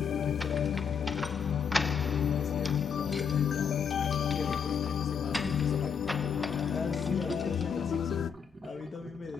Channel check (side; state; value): right; quieter; 6.7 dB